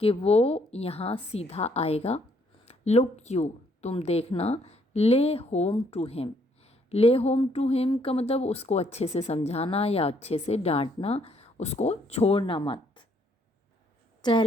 कि वो यहाँ सीधा आएगा। लुक यू, तुम देखना। ले होम टू हिम। ले होम टू हिम का मतलब उसको अच्छे से समझाना या अच्छे से डांटना, उसको छोड़ना मत।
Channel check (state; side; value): normal; both; correlation 0.68